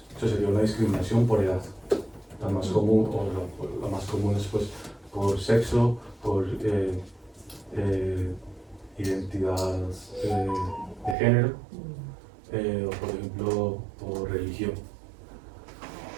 Eso sería una discriminación por edad. La más común, o la más común es pues por sexo, por identidad de género, o por ejemplo por religión.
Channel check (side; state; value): left; drops out; at 11.2 s